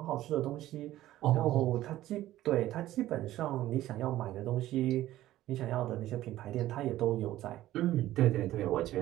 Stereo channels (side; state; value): left; quieter; 14.6 dB